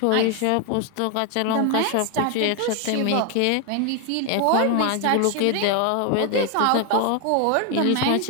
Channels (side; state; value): both; different; correlation 0.01